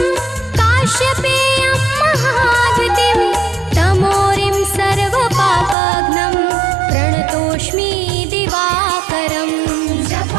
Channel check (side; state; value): left; drops out; at 5.8 s